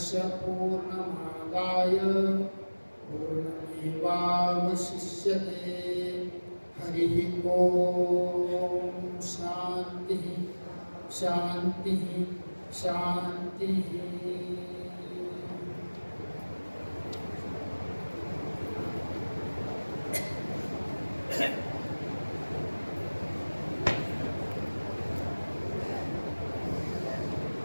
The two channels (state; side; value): inverted; both; correlation -1.00